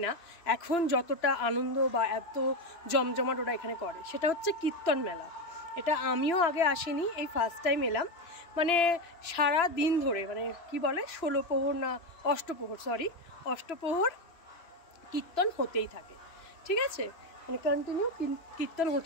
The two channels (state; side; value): late; right; 3.0 ms